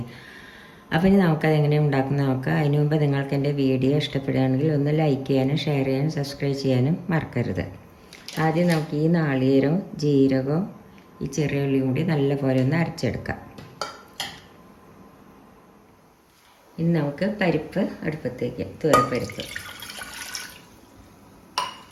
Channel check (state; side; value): identical; both; correlation 1.00